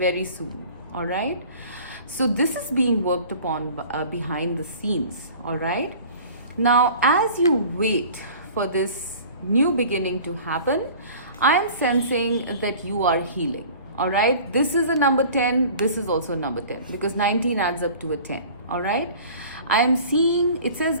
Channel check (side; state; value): both; inverted; correlation -0.44